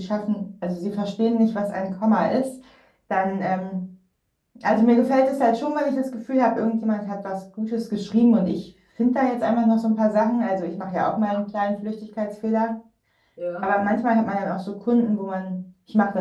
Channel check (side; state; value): both; identical; correlation 1.00